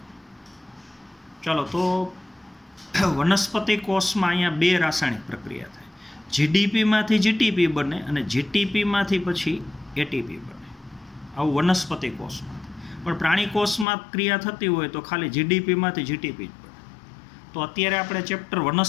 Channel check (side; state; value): right; drops out; at 13.9 s